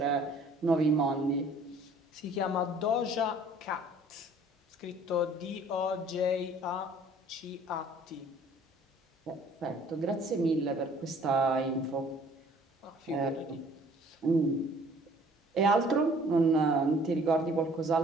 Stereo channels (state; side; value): normal; both; correlation 0.55